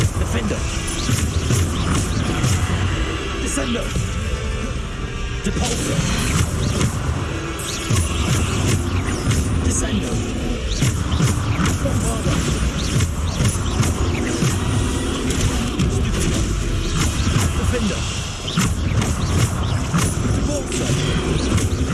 Defender. Descendo. Descendo. Depulso. Descendo. Bombarder. Defender. Depulso.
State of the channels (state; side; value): identical; both; correlation 1.00